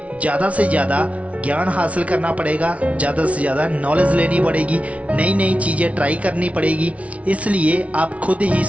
ज़्यादा से ज़्यादा ज्ञान हासिल करना पड़ेगा, ज़्यादा से ज़्यादा नॉलेज लेनी पड़ेगी, नई नई चीज़ें ट्राई करनी पड़ेगी। इसलिए आप खुद ही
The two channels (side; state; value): left; late; 0.065 ms